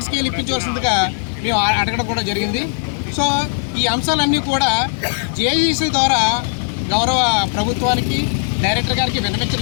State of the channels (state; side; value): silent; right; 65 dB below the other